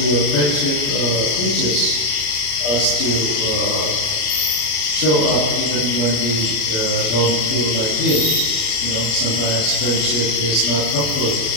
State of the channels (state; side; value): late; right; 34 ms